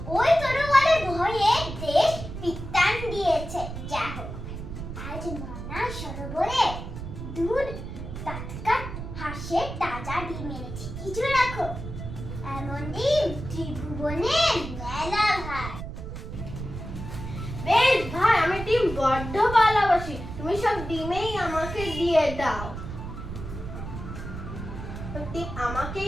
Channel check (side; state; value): right; noise; rumble, 8 dB below the sound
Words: ওই তরোয়ালের ভয়ে দেশ বিত্তান দিয়েছে। যা হোক, আজ মানা সরোবরে দুধ টাটকা হাঁসের তাজা ডিম এনেছি, কিছু রাখো। এমন ডিম ত্রিভুবনে মেলা ভাই। বেশ ভাই, আমি ডিম বড্ড ভালোবাসি, তুমি সব ডিমেই আমাকে দিয়ে দাও। ডিম